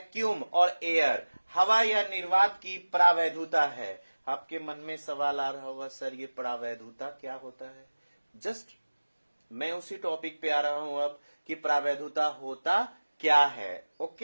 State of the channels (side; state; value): both; inverted; correlation -1.00